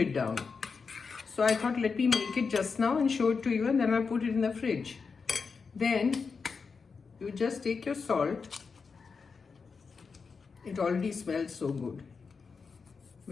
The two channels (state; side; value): quieter; right; 5.1 dB